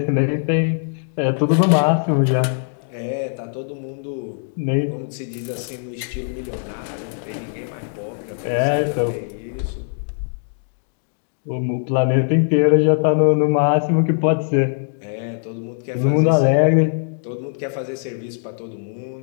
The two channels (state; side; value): silent; right; digital silence